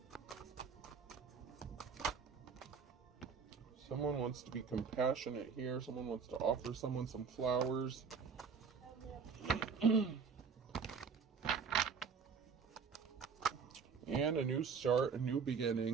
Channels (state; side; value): quieter; left; 5.9 dB